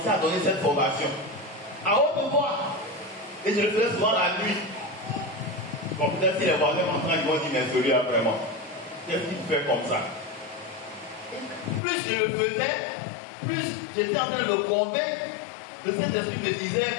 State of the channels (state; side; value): drops out; right; at 11.8 s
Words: à donner cette formation. À haute voix. Et je le faisais souvent la nuit. Bon, peut-être si les voisins m'entendent, ils vont dire, mais celui-là vraiment. Qu'est-ce qu'il fait comme ça? Et plus je le faisais, plus j'étais en train de me convaincre Le Saint-Esprit me disait